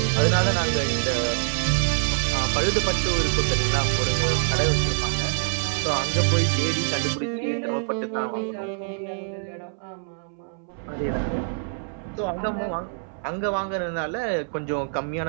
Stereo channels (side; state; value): left; silent; 62 dB below the other